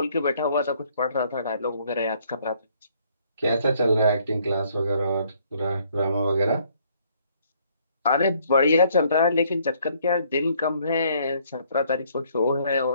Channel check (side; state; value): both; inverted; correlation -0.65